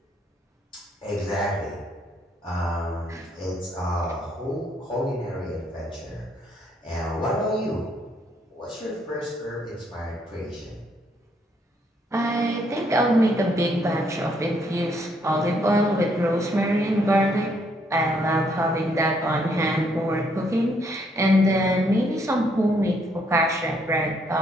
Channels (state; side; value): normal; both; correlation 0.71